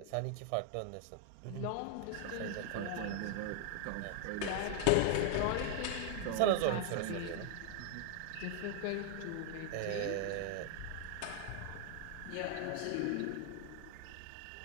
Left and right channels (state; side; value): different; both; correlation 0.00